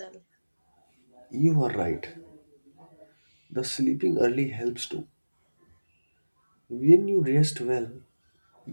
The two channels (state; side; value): inverted; both; correlation -1.00